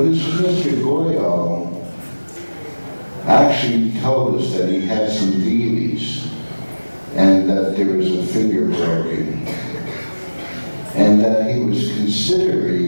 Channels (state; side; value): inverted; both; correlation -1.00